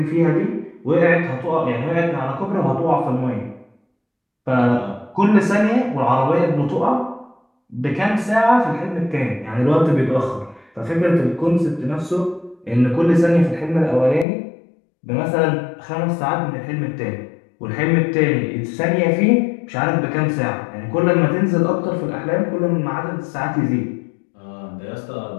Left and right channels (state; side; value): drops out; right; at 14.2 s